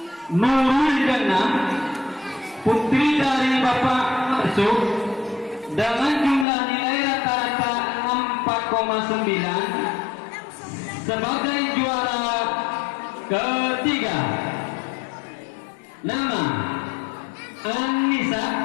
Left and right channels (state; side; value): drops out; right; at 6.5 s